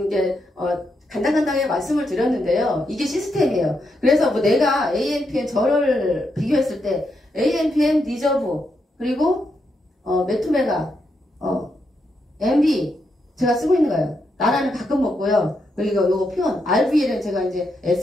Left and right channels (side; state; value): both; normal; correlation 0.82